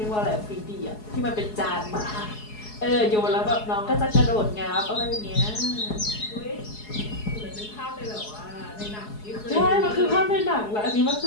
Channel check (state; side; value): late; right; 4.7 ms